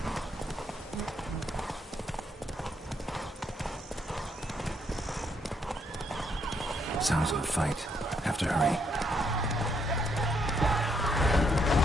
Sounds of a fight. Have to hurry.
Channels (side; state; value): both; normal; correlation 0.74